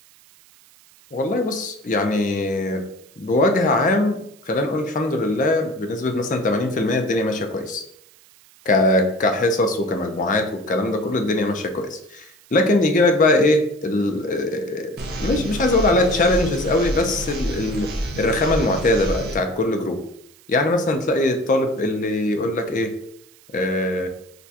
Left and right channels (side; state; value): right; noise; hiss, 28 dB below the sound